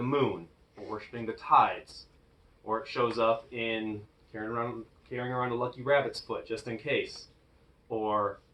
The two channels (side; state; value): both; identical; correlation 1.00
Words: moon, or worshiping the tides, or it shows up in carrying around a lucky rabbit's foot just in case, or